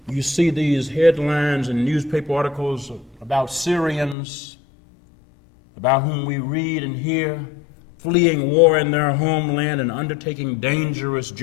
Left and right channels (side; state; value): right; drops out; at 4.2 s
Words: You see these headlines in newspaper articles about Syrians, about whom we read and hear, fleeing war in their homeland and undertaking dangerous